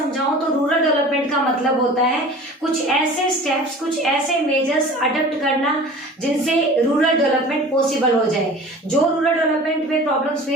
तो रूरल डेवलपमेंट का मतलब होता है कुछ ऐसे स्टेप्स, कुछ ऐसे मेजर्स अडॉप्ट करना जिनसे रूरल डेवलपमेंट पॉसिबल हो जाए। जो रूरल डेवलपमेंट में प्रॉब्लम्स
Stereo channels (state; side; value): normal; both; correlation 0.41